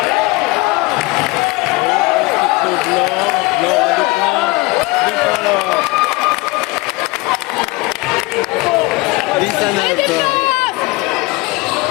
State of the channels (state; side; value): quieter; right; 23.2 dB